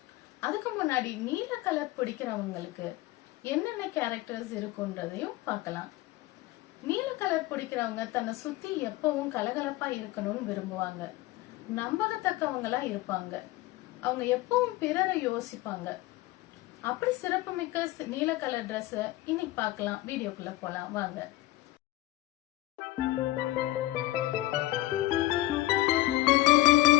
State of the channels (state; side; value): quieter; right; 17.9 dB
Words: அதுக்கு முன்னாடி நீல கலர் பிடிக்கிறவங்களுக்கு என்னென்ன கேரக்டர்ஸ் இருக்குன்றதையும் பார்க்கலாம். நீல கலர் பிடிக்கிறவங்க தன்னை சுத்தி எப்பவும் கலகலப்பா இருக்கணும்னு விரும்புவாங்க. நம்பகத்தக்கவங்களா இருப்பாங்க. அவங்க எப்பவும் பிறரை யோசிப்பாங்க. அப்படி சிறப்புமிக்க நீல கலர் ட்ரெஸ் இன்னைக்கு பார்க்கலாம். வீடியோக்குள்ள போலாம் வாங்க.